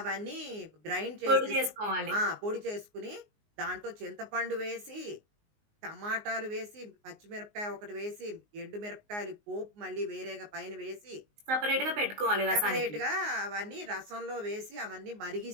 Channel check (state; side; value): late; left; 19 ms